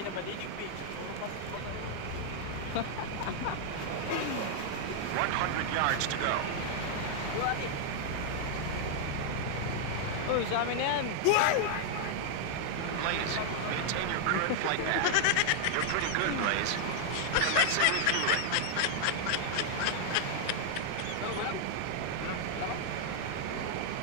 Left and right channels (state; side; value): different; both; correlation 0.00